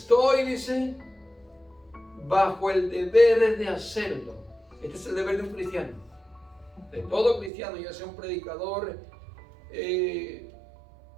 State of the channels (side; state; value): left; drops out; at 7.5 s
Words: dice, bajo el deber de hacerlo. Este es el deber de un cristiano. De todo cristiano, ya sea un predicador que